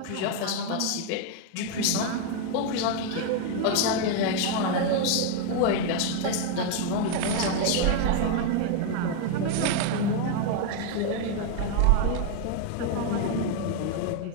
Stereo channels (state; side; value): different; both; correlation 0.01